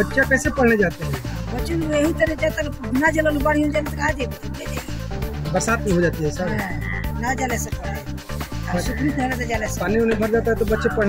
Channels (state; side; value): identical; both; correlation 1.00